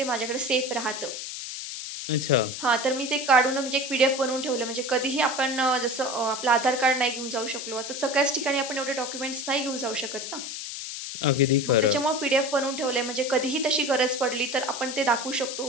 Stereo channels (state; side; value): noise; left; hiss, 7 dB below the sound